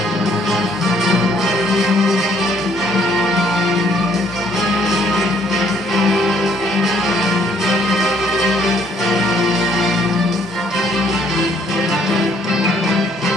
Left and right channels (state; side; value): normal; both; correlation 0.65